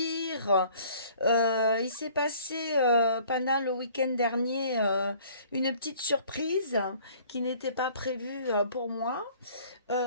Il s'est passé pendant le week-end dernier une petite surprise qui n'était pas prévue pour moi.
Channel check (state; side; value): inverted; both; correlation -0.54